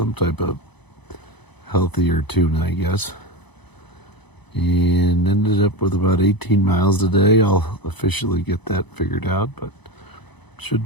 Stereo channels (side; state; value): right; late; 0.99 ms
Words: type of healthier tuna, I guess. And ended up with about 18 miles today. I'll officially get that figured out, but should